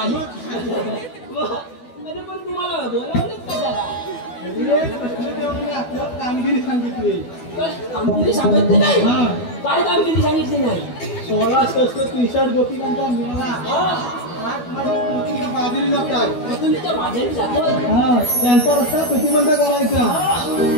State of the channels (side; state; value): right; late; 12 ms